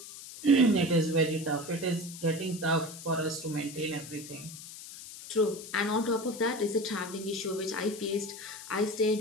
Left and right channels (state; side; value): noise; left; hiss, 13 dB below the sound